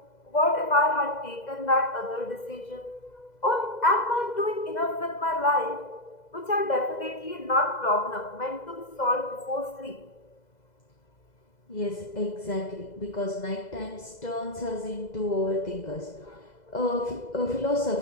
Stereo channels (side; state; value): right; late; 2.0 ms